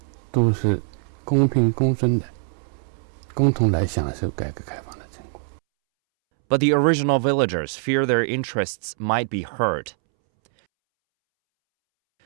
都是公平公正的，共同来享受改革开放的成果。But the original villagers fear their interests might be hurt.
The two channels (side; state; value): left; silent; 63 dB below the other